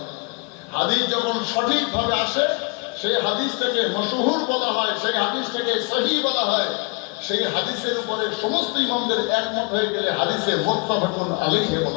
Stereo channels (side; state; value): right; quieter; 30.1 dB